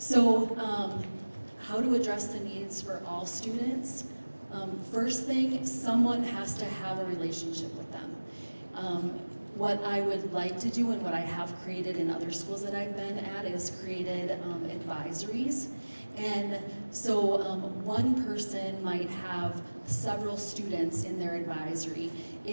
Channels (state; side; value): inverted; both; correlation -1.00